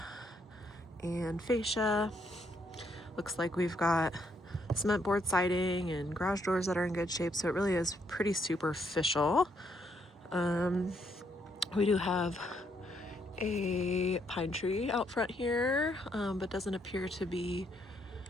and fascia. Looks like we've got cement board siding and garage doors that are in good shape, so it really is pretty superficial. We do have a pine tree out front here, but doesn't appear to be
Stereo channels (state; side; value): normal; both; correlation 0.73